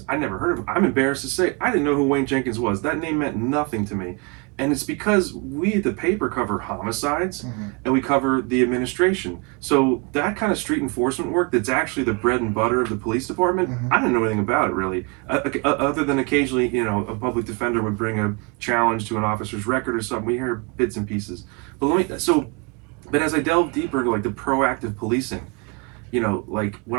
I never heard of him. I'm embarrassed to say, I didn't know who Wayne Jenkins was. That name meant nothing to me. And it's because we at the paper cover homicides and we cover the administration. So that kind of street enforcement work that's actually the bread and butter of the police department, I didn't know anything about it really. Other than occasionally, you know, a public defender would bring a challenge to an officer's record or something. We hear bits and pieces. But as I delve deeper into like the proactive policing, you know, like when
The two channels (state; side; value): quieter; left; 30.8 dB